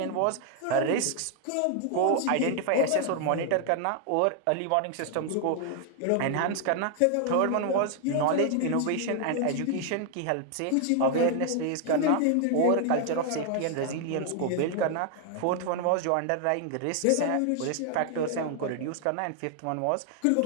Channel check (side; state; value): both; different; correlation 0.00